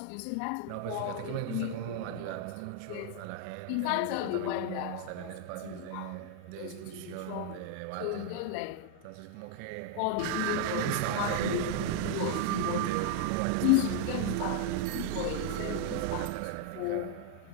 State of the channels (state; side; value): different; both; correlation 0.00